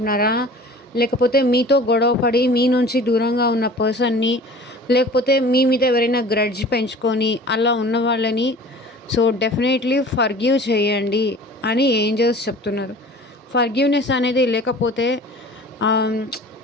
లేకపోతే మీతో గొడవ పడి మీ నుంచి దూరంగా ఉన్న పర్సన్‌ని, లేకపోతే మీ మీద ఎవరైనా గ్రడ్జ్ పెంచుకొని అలా ఉన్న వాళ్ళని సో, డెఫినెట్‌లీ ఫర్‌గివ్ చేయండి అని ఏంజెల్స్ చెప్తున్నారు. ఫర్‌గివ్‌నెస్ అనేది లేకపోతే ఆహ్,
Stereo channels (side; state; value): both; normal; correlation 0.43